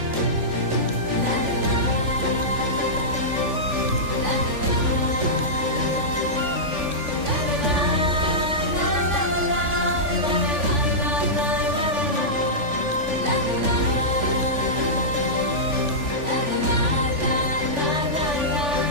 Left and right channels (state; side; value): late; left; 3.5 ms